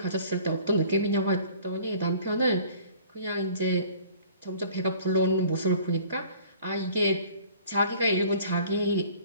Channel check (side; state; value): both; inverted; correlation -0.51